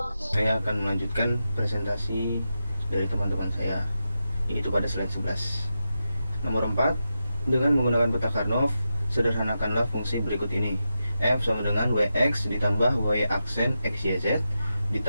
Saya akan melanjutkan presentasi dari teman-teman saya, yaitu pada slide 11. Nomor 4, dengan menggunakan peta Karnaugh, sederhanakanlah fungsi berikut ini. F sama dengan Wx ditambah Y aksen X, Y, Z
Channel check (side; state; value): both; inverted; correlation -0.89